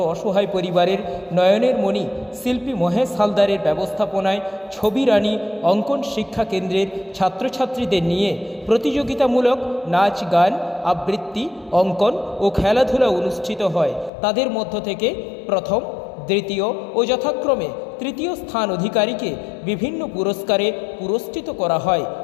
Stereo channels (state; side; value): drops out; right; at 14.1 s